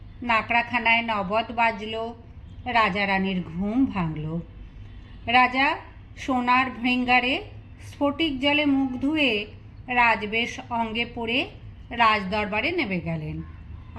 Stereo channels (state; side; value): identical; both; correlation 1.00